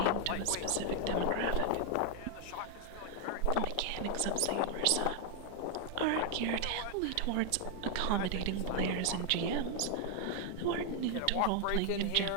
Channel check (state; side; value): different; both; correlation 0.00